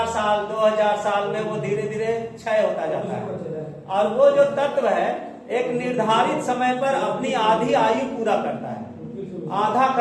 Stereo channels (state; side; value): identical; both; correlation 1.00